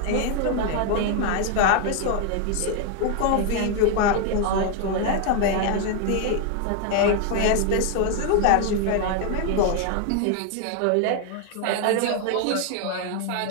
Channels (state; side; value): different; both; correlation 0.00